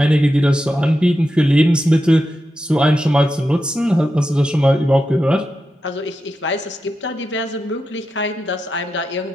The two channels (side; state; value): both; normal; correlation 0.89